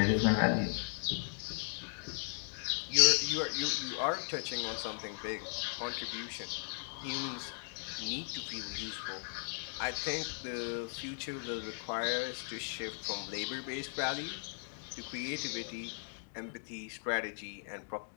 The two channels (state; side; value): silent; right; digital silence